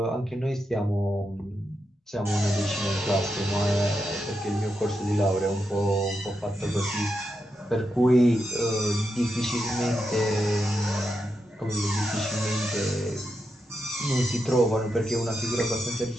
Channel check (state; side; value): normal; both; correlation 0.86